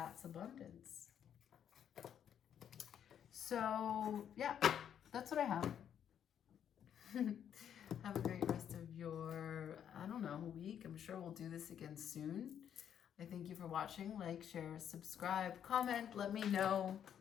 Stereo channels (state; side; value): quieter; right; 9.1 dB